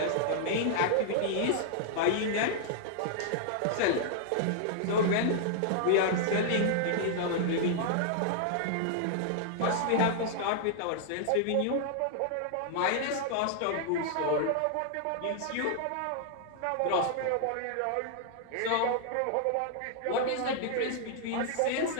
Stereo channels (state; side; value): different; both; correlation -0.01